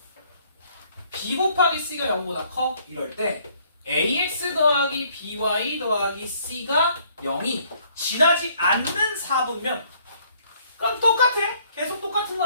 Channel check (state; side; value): inverted; both; correlation -0.63